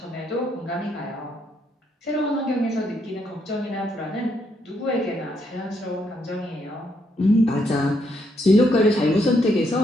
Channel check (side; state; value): both; normal; correlation 0.75